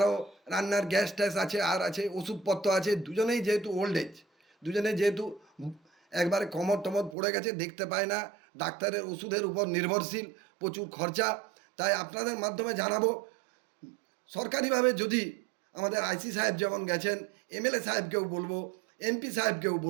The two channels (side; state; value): left; drops out; at 7.2 s